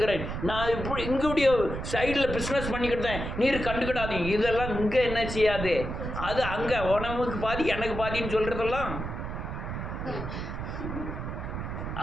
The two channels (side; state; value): right; noise; rumble, 5 dB below the sound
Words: நான் இப்படி இங்குடைய சைடில் பிஸ்னஸ் பண்ணிக்கிட்டேன், நீர் கண்டுக்கிடாதீங்க. இதெல்லாம் இங்கே என்ன செய்யாது, அது அங்கே உனக்கு பாதி எனக்கு பாதின்னு சொல்கிறதெல்லாம்